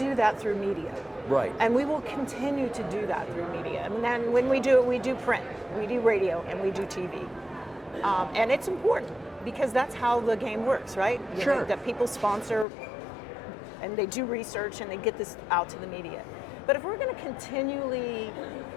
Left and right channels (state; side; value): drops out; right; at 12.7 s